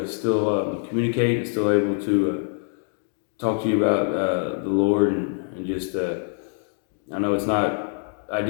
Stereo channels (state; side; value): silent; right; 55 dB below the other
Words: still communicate and still able to talk to you about the Lord and just I know it's not